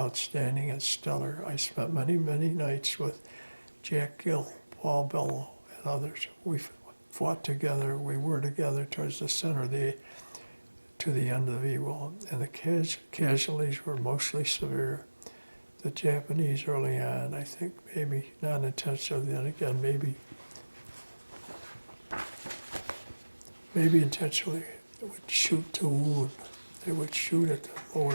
and stellar. I spent many, many nights with Jack Gill, Paul Bellow, and others. We fought together. We were together towards the center to the end of Iwo, and the casualties were mostly severe. The Japanese early on, I think maybe not intentionally, then again maybe intentionally, would shoot to wound. They would shoot at the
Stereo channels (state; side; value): inverted; both; correlation -1.00